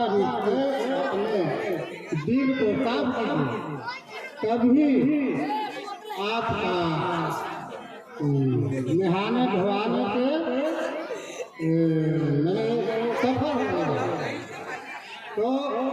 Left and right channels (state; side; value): identical; both; correlation 1.00